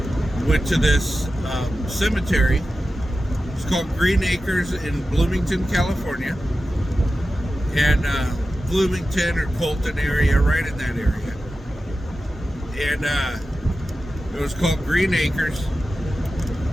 went to this cemetery. It's called Green Acres in Bloomington, California, and Bloomington or Colton area, right in that area. And it was called Green Acres.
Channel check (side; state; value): both; normal; correlation 0.93